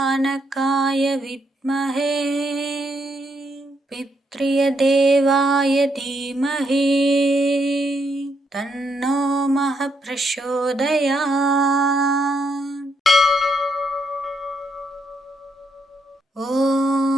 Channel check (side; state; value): both; normal; correlation 0.77